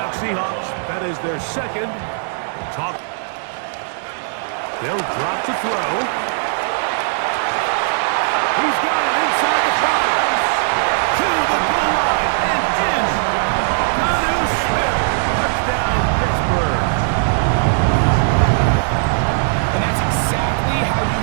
Seahawks. That is their second. They'll drop to throw. He's got it inside the 5. To the goal line and in. Jonnu Smith. Touchdown, Pittsburgh. And that's exactly how you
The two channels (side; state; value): left; silent; digital silence